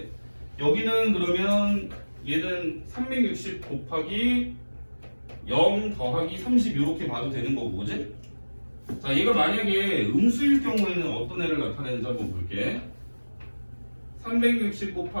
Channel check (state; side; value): inverted; both; correlation -1.00